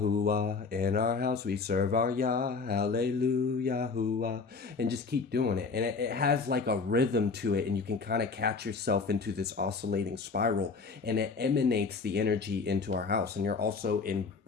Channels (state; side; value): quieter; right; 4.6 dB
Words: In our house we serve our Yah, hallelujah, hooah. And just keep doing it. And it has like a rhythm to it, and you can kind of catch yourself into this oscillating spiral, and it emanates the energy into our house. And you're also